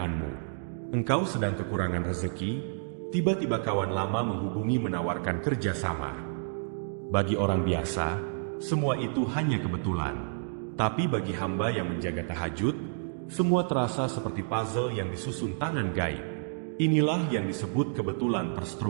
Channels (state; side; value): silent; left; digital silence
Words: Engkau sedang kekurangan rezeki, tiba-tiba kawan lama menghubungi menawarkan kerjasama. Bagi orang biasa, semua itu hanya kebetulan. Tapi bagi hamba yang menjaga tahajud, semua terasa seperti puzzle yang disusun tangan gaib. Inilah yang disebut kebetulan